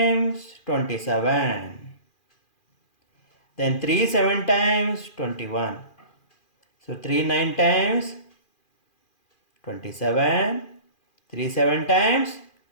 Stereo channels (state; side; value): late; right; 2.4 ms